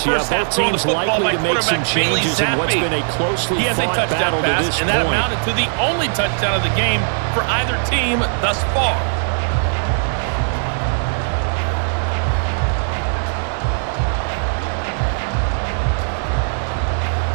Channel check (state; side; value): silent; left; digital silence